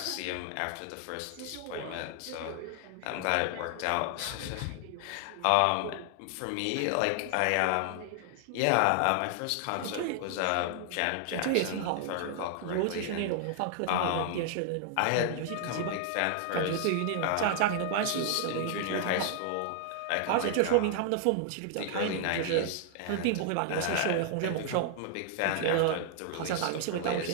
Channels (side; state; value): both; different; correlation 0.00